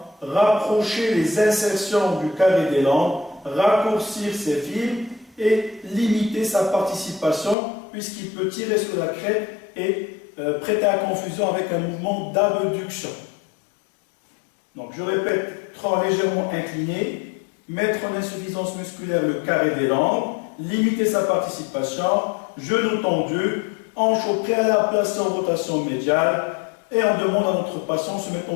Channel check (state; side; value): drops out; right; at 7.6 s